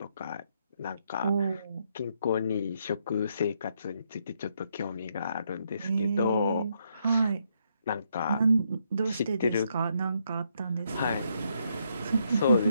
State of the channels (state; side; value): inverted; both; correlation -0.75